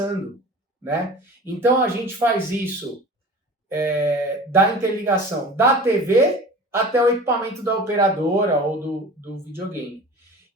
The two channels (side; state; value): both; normal; correlation 0.39